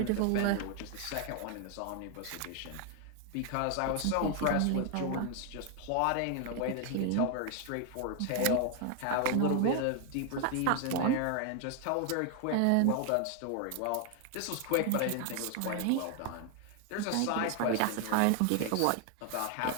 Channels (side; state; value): both; different; correlation 0.00